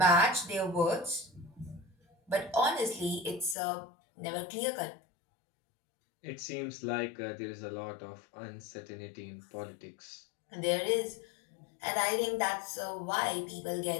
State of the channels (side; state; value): right; drops out; at 3.6 s